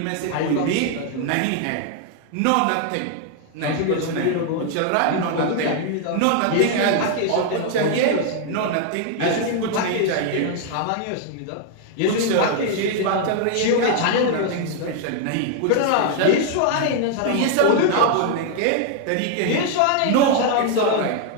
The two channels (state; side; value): different; both; correlation 0.00